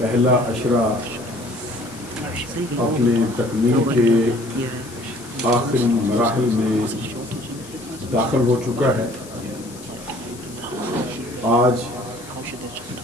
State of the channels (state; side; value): noise; left; hiss, 18 dB below the sound